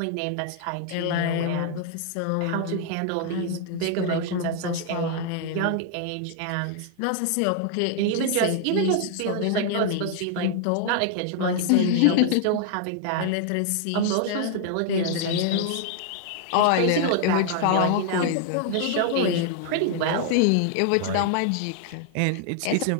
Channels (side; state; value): both; different; correlation 0.00